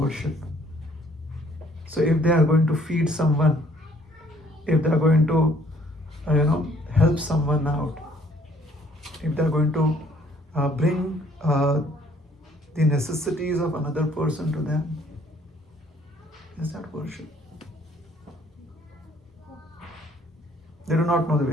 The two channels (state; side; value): normal; both; correlation 0.61